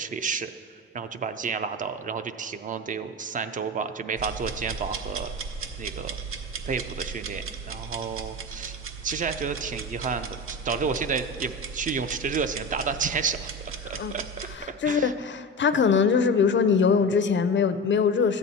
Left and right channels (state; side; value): normal; both; correlation 0.26